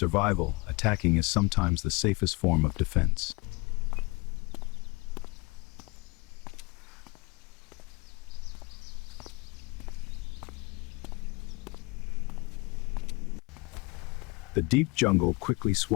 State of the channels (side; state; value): right; quieter; 26.3 dB